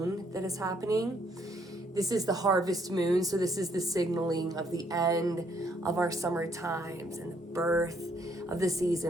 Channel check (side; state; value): both; normal; correlation 0.69